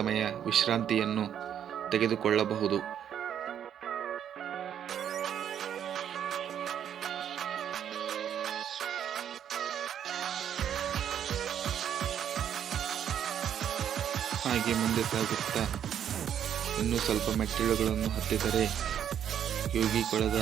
ವಿಶ್ರಾಂತಿಯನ್ನು ತೆಗೆದುಕೊಳ್ಳಬಹುದು. ಹಾಗೆ ಮುಂದೆ ಸಾಗುತ್ತಾ ಇನ್ನೂ ಸ್ವಲ್ಪ ಮೆಟ್ಟಿಲುಗಳನ್ನು ಹತ್ತಿದರೆ ಯೋಗಿಕೊಳದ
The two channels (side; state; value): left; quieter; 9.4 dB